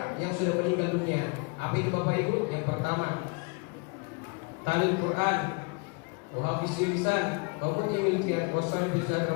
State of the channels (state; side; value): quieter; right; 32.6 dB